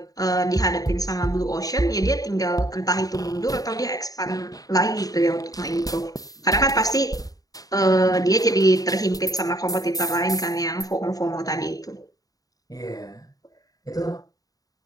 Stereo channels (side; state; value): right; late; 0.18 ms